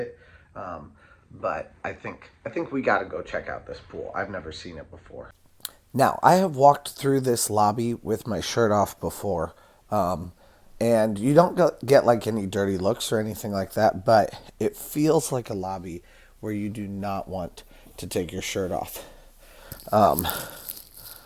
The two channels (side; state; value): both; identical; correlation 1.00